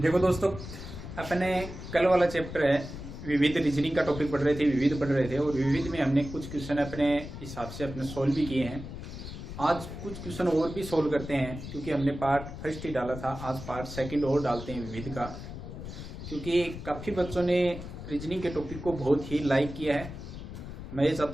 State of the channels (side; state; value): left; noise; rumble, 10 dB below the sound